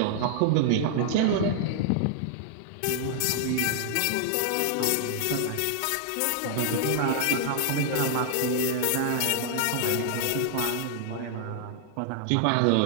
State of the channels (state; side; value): different; both; correlation -0.01